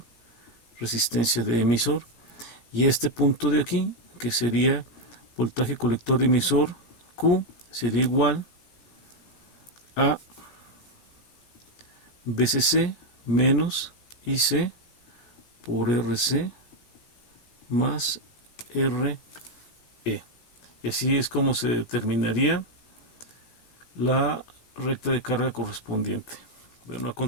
resistencia de emisor. Y este punto de aquí, que sería voltaje colector emisor Q, sería igual a VCC menos IC por RC más RE. Y así es como se determinaría la recta de carga correspondiente. Bueno, a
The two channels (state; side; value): late; right; 17 ms